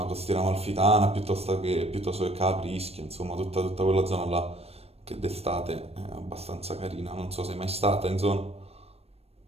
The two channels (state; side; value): late; left; 0.29 ms